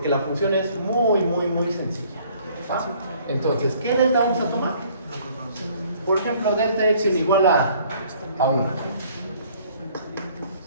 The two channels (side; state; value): both; inverted; correlation -0.59